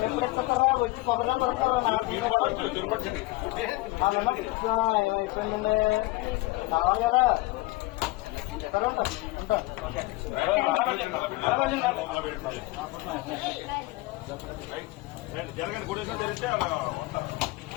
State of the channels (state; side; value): quieter; right; 20.8 dB